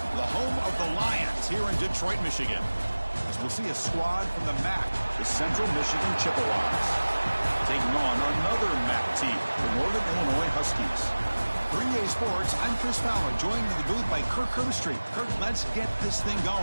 the home of the Lions here in Detroit, Michigan. As we'll see a squad from the MAC, the Central Michigan Chippewas, taking on another MAC team, the Northern Illinois Huskies. For EA Sports, I'm Chris Fowler, joined in the booth by Kirk Herbstreit. Kirk, let's get this thing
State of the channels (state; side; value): inverted; both; correlation -1.00